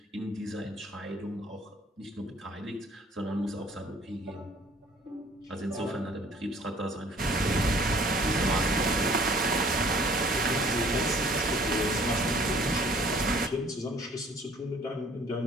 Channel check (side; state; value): both; normal; correlation 0.55